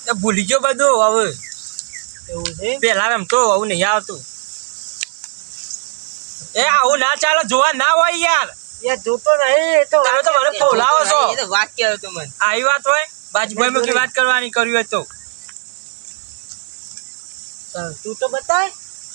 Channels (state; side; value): silent; left; 65 dB below the other